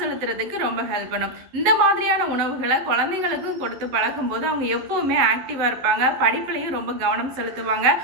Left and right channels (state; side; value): late; left; 11 ms